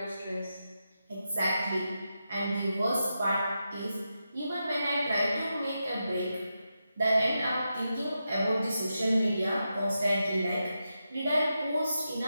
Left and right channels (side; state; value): both; inverted; correlation -0.87